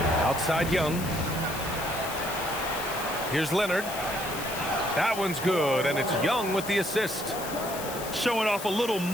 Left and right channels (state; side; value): noise; left; hiss, 10 dB below the sound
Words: Outside Young. Here's Leonard. That one's good, and it's Young with the assist. Showing off a little